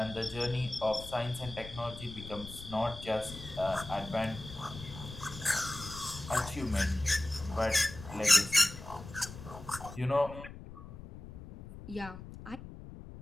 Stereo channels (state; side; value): noise; left; rumble, 13 dB below the sound